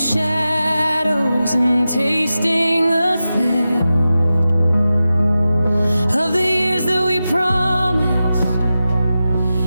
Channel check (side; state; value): both; inverted; correlation -0.93